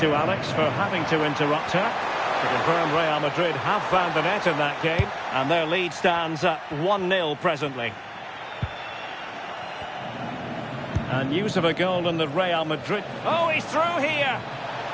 Alex for having to interrupt her. To confirm, Real Madrid have found the net in that game, and their lead stands at 1-0 presently. And news of a goal in the Real Madrid... Oh, he's through here!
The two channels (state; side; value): identical; both; correlation 1.00